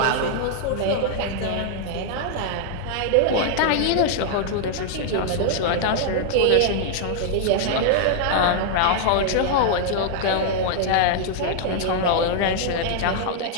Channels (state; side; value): different; both; correlation -0.01